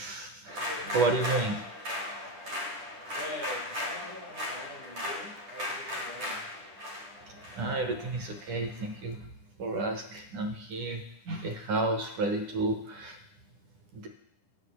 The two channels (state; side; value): late; left; 10 ms